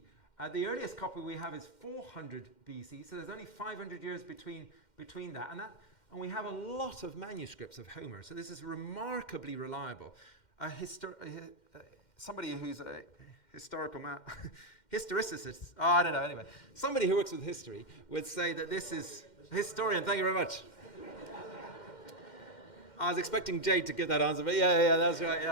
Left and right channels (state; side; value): late; right; 2.1 ms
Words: The earliest copy we have is 400 BC, so there's only 500 years between that. And we have a lot of manuscripts of Homer, so this is remarkably reliable. Somebody who's a historical historicist, I don't know, anyway. Somebody who works with history would say that this is, historian, thank you very much. I was expecting Jade to give that answer, but yeah, that's right.